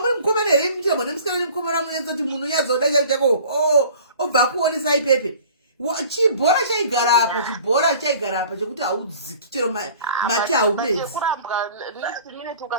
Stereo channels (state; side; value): inverted; both; correlation -0.48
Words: mukomana here muchirambwa nemusikana nemukomana munetsa kuti munhu unyazoda chako obva kuonesa ipepe. Chibhora chaigara apa chekuti haudziki chero mate haumedzi. Yekurambwa next minute